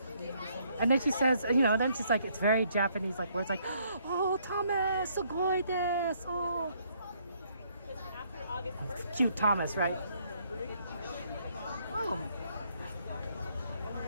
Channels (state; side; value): inverted; both; correlation -0.68